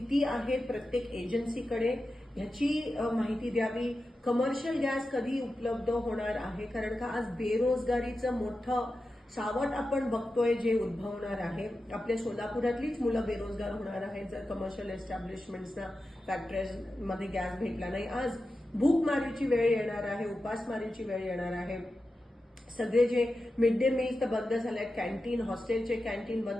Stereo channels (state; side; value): normal; both; correlation 0.92